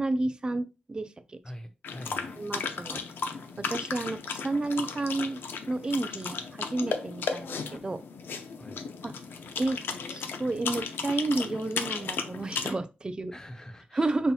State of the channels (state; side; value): normal; both; correlation 0.77